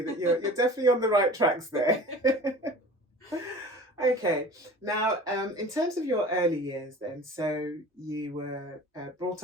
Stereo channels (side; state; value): both; normal; correlation 0.41